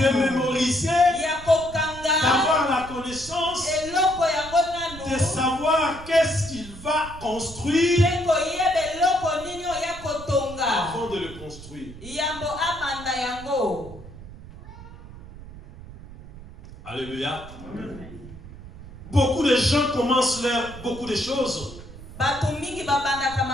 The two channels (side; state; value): right; noise; rumble, 15 dB below the sound